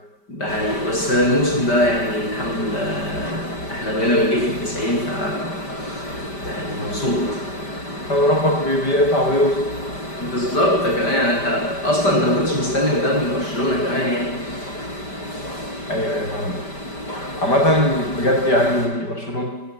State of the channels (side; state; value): right; late; 5.1 ms